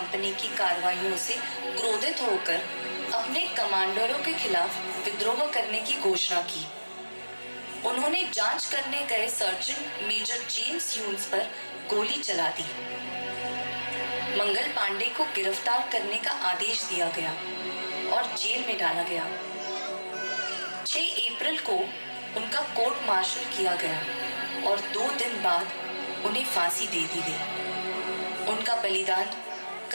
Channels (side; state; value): both; inverted; correlation -1.00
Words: की कार्रवाइयों से क्रोधित होकर अपने कमांडरों के खिलाफ विद्रोह करने की घोषणा की। उन्होंने जांच करने गए सर्जन मेजर जेम्स ह्यूज पर गोली चला दी। मंगल पांडे को गिरफ्तार करने का आदेश दिया गया और जेल में डाला गया। 6 अप्रैल को उनका कोर्ट मार्शल किया गया और 2 दिन बाद उन्हें फांसी दे दी गई। उनका बलिदान